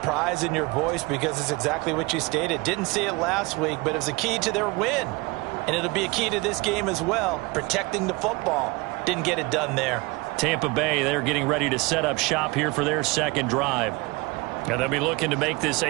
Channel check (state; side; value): quieter; left; 24.7 dB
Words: in your voice because it's exactly what you stated. Didn't see it last week, but it was a key to their win. And it'll be a key to this game as well, protecting the football. Didn't get it done there. Tampa Bay, they're getting ready to set up shop here for their second drive. And they'll be looking to make this